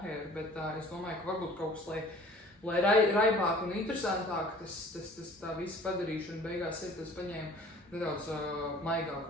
bet es domāju, ka varbūt kaut kas, lai raibāk un interesantāk, tā visa padarīšana beigās ir, tas paņēma nedaudz maigāk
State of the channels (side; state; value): both; normal; correlation 0.49